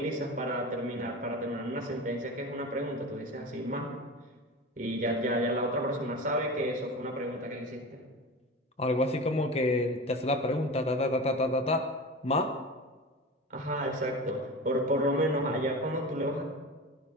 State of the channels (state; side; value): normal; both; correlation 0.30